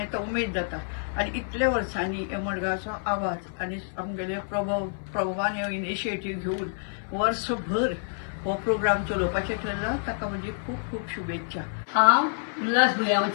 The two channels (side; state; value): right; silent; 56 dB below the other